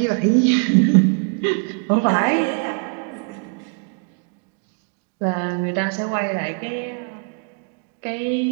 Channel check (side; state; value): left; quieter; 37.6 dB